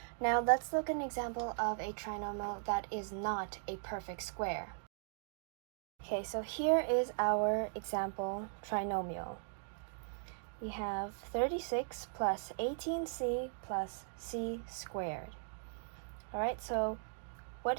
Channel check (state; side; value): silent; left; digital silence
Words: Now let's look at an example of a trinomial that is not a perfect square. Okay, so here is our example trinomial. We have 36 plus 18c plus c squared. All right, so what